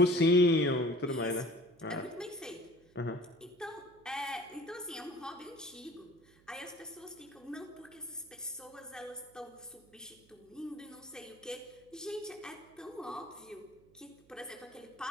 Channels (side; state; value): right; noise; hum, 28 dB below the sound